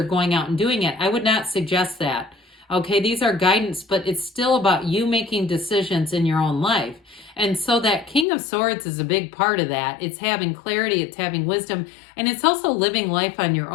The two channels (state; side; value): drops out; right; at 8.2 s